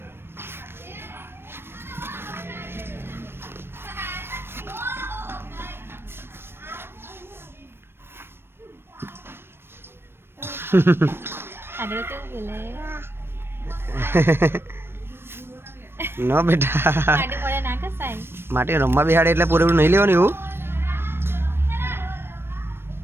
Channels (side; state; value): left; late; 0.11 ms